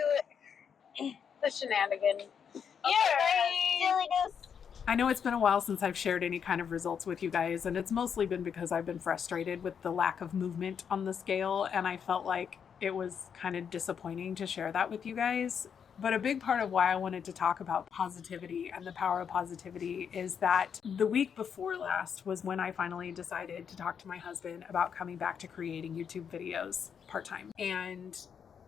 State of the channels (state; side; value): quieter; right; 7.3 dB